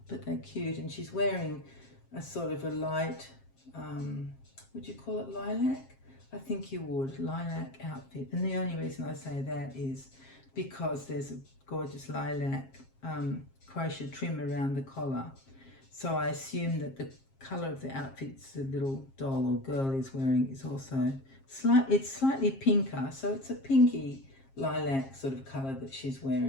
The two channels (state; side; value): late; right; 7.5 ms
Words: but they're cute. And she's wearing a sort of a light, would you call it lilac? I think you would, lilac outfit. And the only reason I say that is because there's a gorgeous lilac crochet trim around the collar. So I assume that the colour of the outfits the little doll or girl is wearing is also it's slightly pinker, so it's a pinky lilac sort of colour that she's